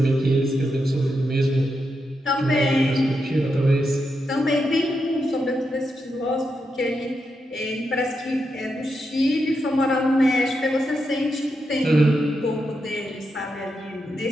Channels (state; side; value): normal; both; correlation 0.85